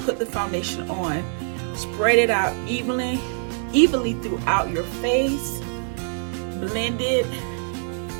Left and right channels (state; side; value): silent; left; 62 dB below the other